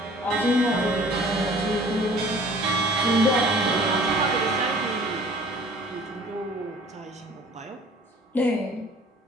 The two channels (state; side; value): normal; both; correlation 0.50